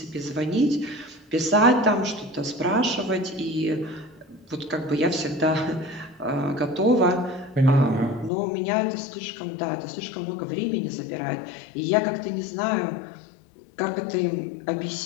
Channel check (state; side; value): drops out; right; at 8.3 s